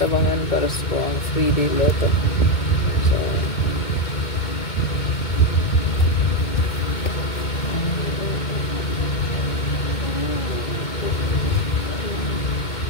abangan para sa 3-day lotto. So,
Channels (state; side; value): late; right; 2.2 ms